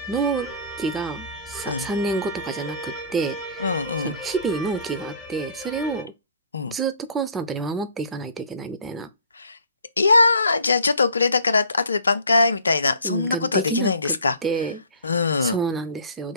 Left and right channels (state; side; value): inverted; both; correlation -0.48